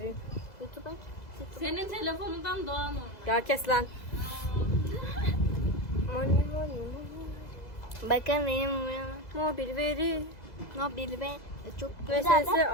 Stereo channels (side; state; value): right; late; 2.0 ms